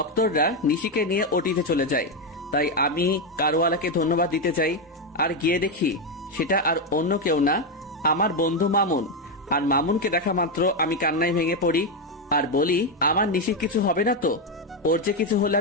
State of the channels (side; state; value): both; normal; correlation 0.07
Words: নিশিকে নিয়ে ওটিতে চলে যায়। তাই আমি কারওয়ালাকে ধন্যবাদ দিতে চাই, আর গিয়ে দেখি সেটা আর অন্য কেউ না, আমার বন্ধু মামুন। আর মামুনকে দেখা মাত্র আমি কান্নায় ভেঙে পড়ি আর বলি, আমার নিশির কিছু হবে না তো? ওর যে কিছু হলে